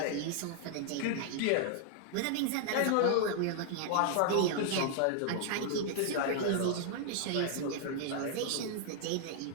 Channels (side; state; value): both; different; correlation 0.00